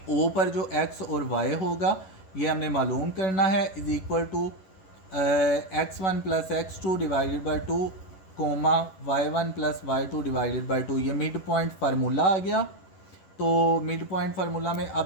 ओ पर जो एक्स और वाई होगा ये हमने मालूम करना है, is equal to x1 plus x2 divided by 2 comma y1 plus y2 divided by 2, ये मिड पॉइंट फार्मूला आ गया। तो मिड पॉइंट फार्मूला में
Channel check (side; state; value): right; late; 11 ms